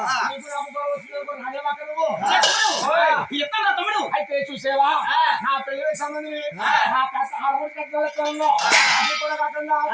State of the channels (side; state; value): both; identical; correlation 1.00